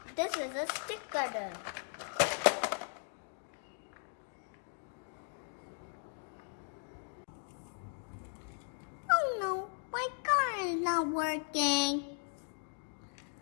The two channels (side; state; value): right; silent; 53 dB below the other